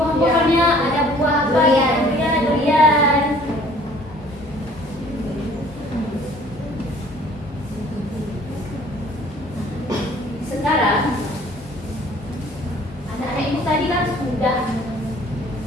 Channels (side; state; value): both; normal; correlation 0.54